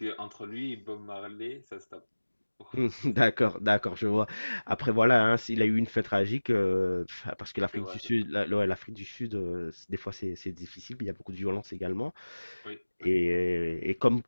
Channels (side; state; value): both; inverted; correlation -1.00